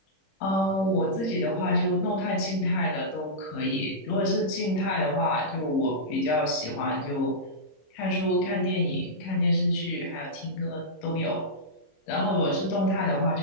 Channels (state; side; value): late; right; 26 ms